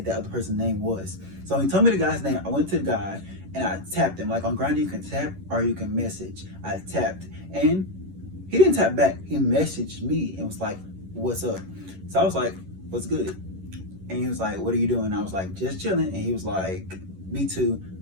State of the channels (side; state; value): left; late; 11 ms